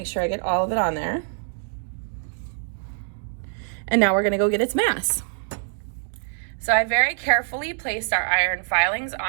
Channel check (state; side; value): silent; left; digital silence